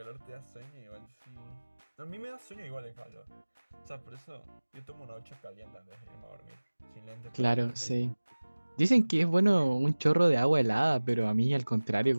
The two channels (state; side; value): inverted; both; correlation -1.00